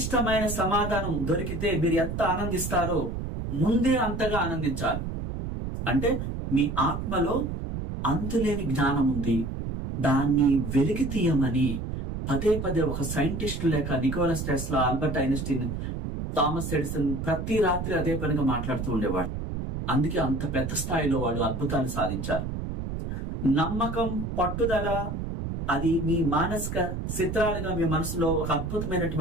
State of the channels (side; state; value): right; noise; rumble, 4 dB below the sound